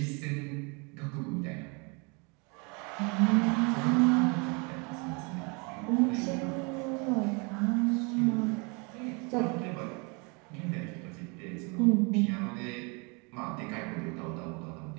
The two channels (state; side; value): quieter; left; 31.4 dB